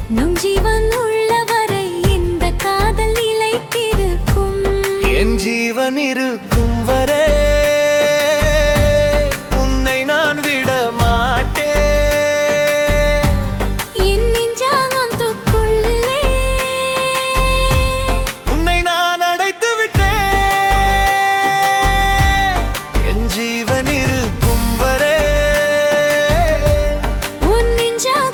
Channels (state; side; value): identical; both; correlation 1.00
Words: நம் ஜீவன் உள்ளவரை இந்த காதல் நிலைத்திருக்கும் என் ஜீவன் இருக்கும் வரை உன்னை நான் விட மாட்டேன் என் நெஞ்சானத்துக்குள்ளே உன்னை நான் அடைத்து விட்டேன் என் ஜீவன் இருக்கும் வரை உன்